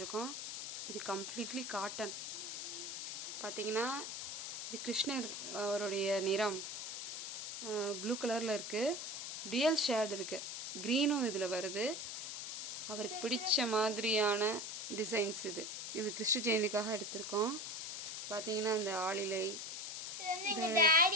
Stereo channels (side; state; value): left; noise; hiss, 5 dB below the sound